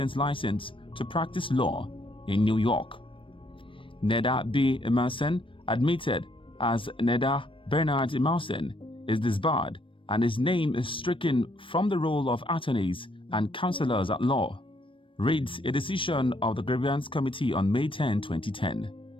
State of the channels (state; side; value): late; right; 0.25 ms